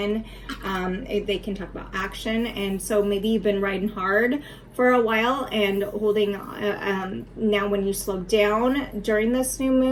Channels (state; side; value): identical; both; correlation 1.00